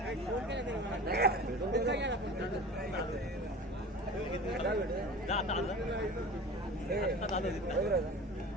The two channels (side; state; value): both; normal; correlation 0.36